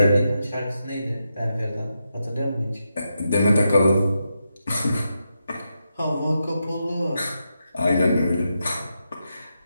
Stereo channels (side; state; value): both; inverted; correlation -0.86